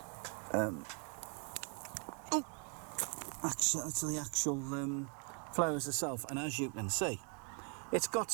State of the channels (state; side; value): quieter; left; 39.7 dB